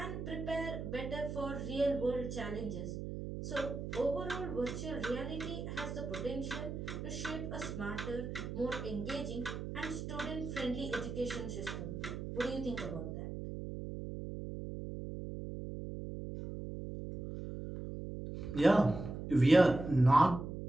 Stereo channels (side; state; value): right; noise; hum, 6 dB below the sound